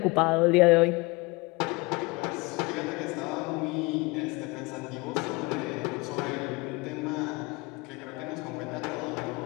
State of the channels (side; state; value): right; quieter; 25.7 dB